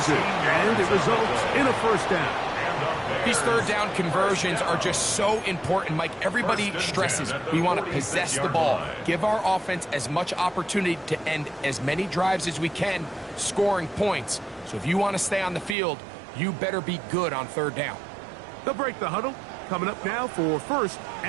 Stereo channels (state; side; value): drops out; left; at 15.8 s